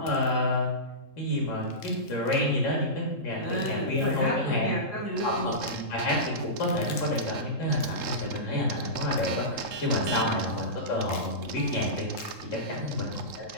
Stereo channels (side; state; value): right; late; 3.7 ms